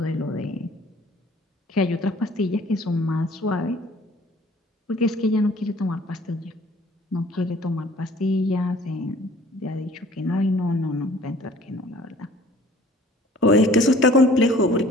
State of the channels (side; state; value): both; normal; correlation 0.52